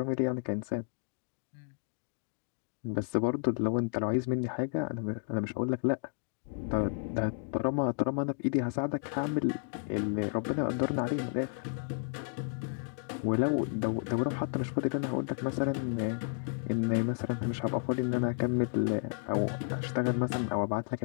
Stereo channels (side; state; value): right; silent; 56 dB below the other